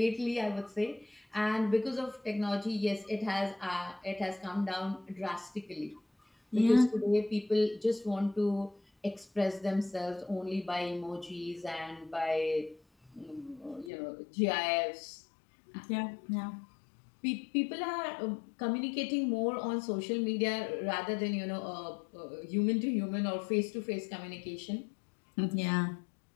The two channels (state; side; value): drops out; right; at 13.9 s